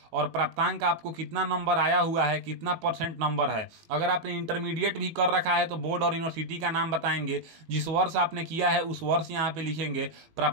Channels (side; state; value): left; late; 18 ms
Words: और प्राप्तांक आपको कितना नंबर आया हुआ है, कितना % नंबर है। अगर आपने इंटरमीडिएट भी कर रखा है तो बोर्ड और यूनिवर्सिटी का नाम बताएंगे, जिस वर्ष आपने किया है उस वर्ष यहाँ पे लिखेंगे,